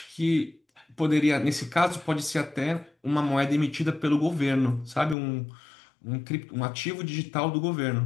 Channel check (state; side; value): drops out; right; at 5.2 s